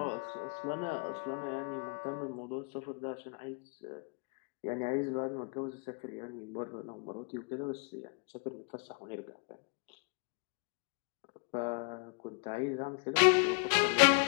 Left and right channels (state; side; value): quieter; right; 35.2 dB